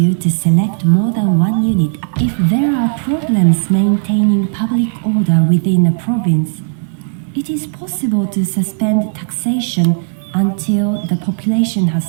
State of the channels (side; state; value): left; silent; 64 dB below the other